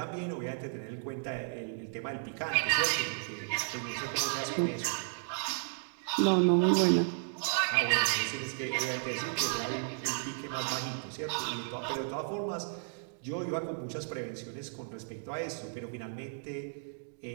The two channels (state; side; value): silent; left; digital silence